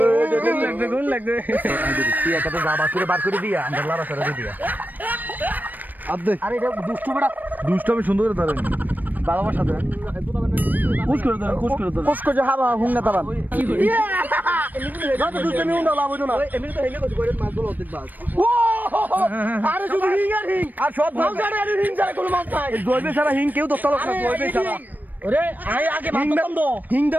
গুণ লাগবে তুই একটা যাবা করে বার করে দিয়া আমরা লারা সারা দিয়া আদে আরে এটা দুষ্টু বড়া দুষ্ট আমি সুন্দর করে ধরেন বাবার সাথে কুছ করে দাও কুছ করে দাও কোসকো যে হাবা হুং না তাবান যত দুষ্ট আমি উন্ডা লাভ হইতো না এমনি তো হেলে কইছে করে মাছ গুলো অর্ধেক বাস ও আরে শুধু হিং আর হিং আর সব মাছ গাড়ি আর হিং ছাড়া কোনো মাছ নাই জয়বে সারা হিং কেউ দস্তা লোক না জয়বে সারা ওরে আই আগে মাছ ধরতাম তো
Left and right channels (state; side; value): late; left; 0.086 ms